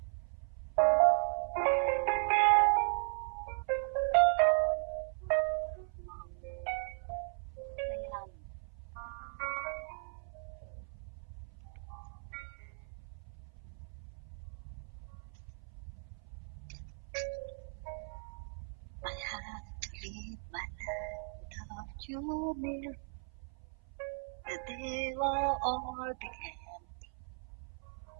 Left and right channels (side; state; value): left; silent; 53 dB below the other